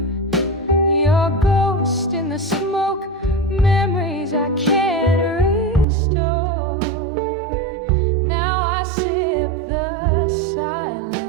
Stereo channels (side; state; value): left; drops out; at 5.9 s